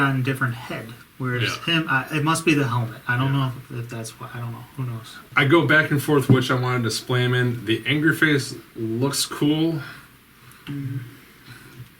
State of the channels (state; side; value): identical; both; correlation 1.00